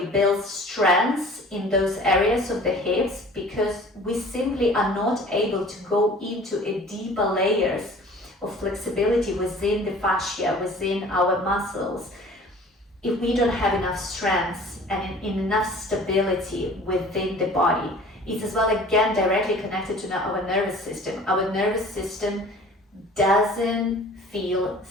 build strengths in those areas of the hips, because we simply are not able to go into a deeper layers of flexibility within the fascia, within our muscles, if we don't have enough strength and enough stability within the body. It's as well, again, directly connected to our nervous system. Our nervous system doesn't feel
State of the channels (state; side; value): normal; both; correlation 0.47